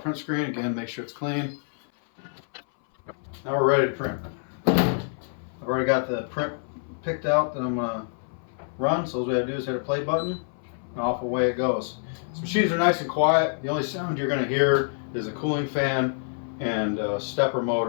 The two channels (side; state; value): right; silent; 60 dB below the other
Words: screen again. Make sure it's clean. Now we're ready to print. I've already got the print picked out that I'm gonna run. So all we have to do is hit a play button, and off away it goes. These machines are nice and quiet. The only sound you're gonna hear is a cooling fan and a stepper